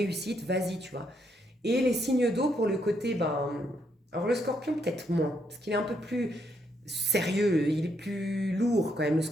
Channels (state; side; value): normal; both; correlation 0.76